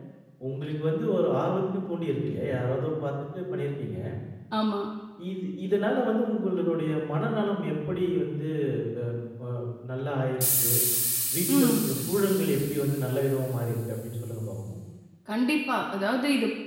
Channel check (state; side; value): identical; both; correlation 1.00